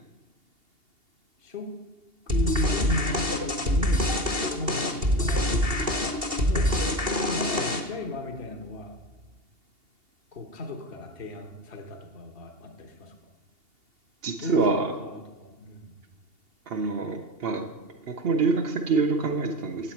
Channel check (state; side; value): late; left; 2.8 ms